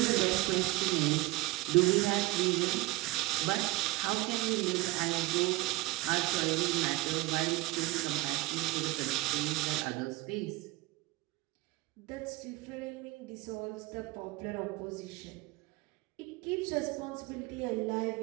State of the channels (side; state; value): left; quieter; 19.9 dB